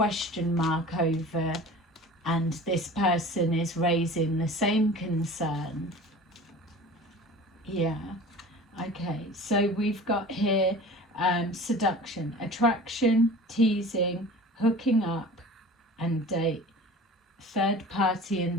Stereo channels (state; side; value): normal; both; correlation 0.40